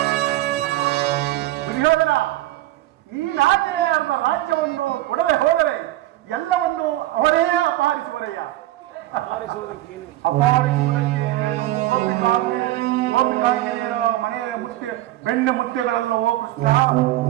ದುರ್ಯೋಧನ, ನೀನಾಗೆ ಅವರ ರಾಜ್ಯವನ್ನು ಕೊಡದೆ ಹೋದರೆ ಎಲ್ಲವನ್ನು ಅವರೇ ಅಪಹರಿಸುವರಯ್ಯ. ಅಪಹರಿಸುವುದಕ್ಕೆ ಗೋಪಿಕಾಂಗಿರಿಯರ ಮನೆಯ ಮುತ್ತೆ ಬೆಣ್ಣೆ ಮುತ್ತೆಗಳೆಲ್ಲವೋ ಕೃಷ್ಣ.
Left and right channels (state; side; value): quieter; left; 15.5 dB